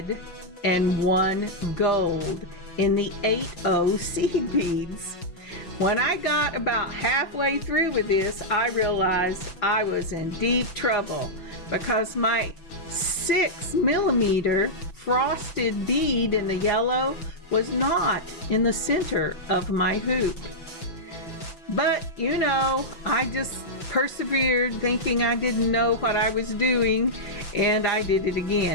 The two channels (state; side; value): late; right; 5.9 ms